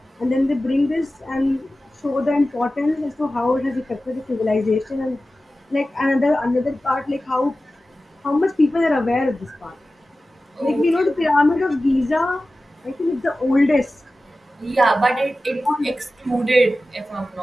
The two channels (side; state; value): both; normal; correlation 0.95